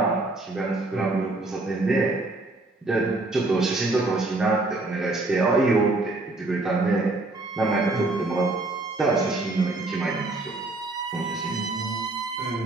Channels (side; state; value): left; quieter; 3.0 dB